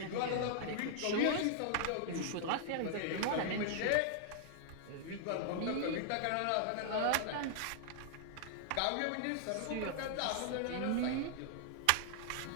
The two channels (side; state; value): both; different; correlation -0.01